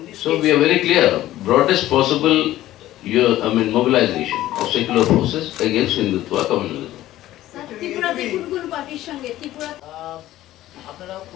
So we are very clear, broadest possible mobilization of secular forces against Hindutva communalism. আপনারা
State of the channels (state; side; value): quieter; right; 14.7 dB